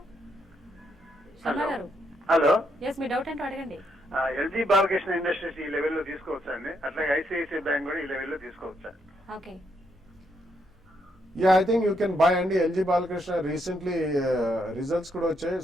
శర్మ గారు. హలో, ఎస్, మీ డౌట్ ఏంటో అడగండి. ఎల్జీ బాలకృష్ణ ఇండస్ట్రీస్ ఈ లెవెల్లో తీసుకోవచ్చా అండి? అట్లాగే ఐసిఐసిఐ బ్యాంక్ కూడా ఈ లెవెల్లో తీసుకోవచ్చా? Okay, Yeah, I think you can buy అండి. ఎల్జీ బాలకృష్ణ రీసెంట్లీ రిజల్ట్స్ కూడా వచ్చాయి.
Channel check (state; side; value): normal; both; correlation 0.76